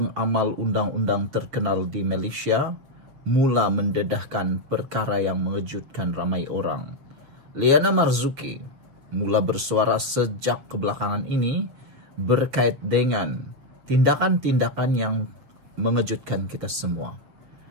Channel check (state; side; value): late; left; 7.4 ms